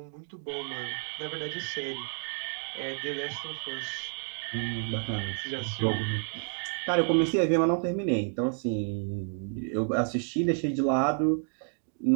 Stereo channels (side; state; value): left; silent; 58 dB below the other